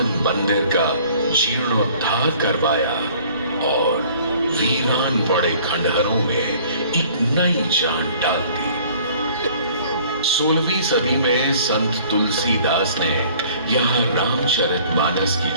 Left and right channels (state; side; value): inverted; both; correlation -0.53